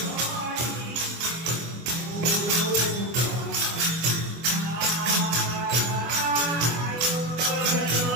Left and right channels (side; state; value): left; late; 24 ms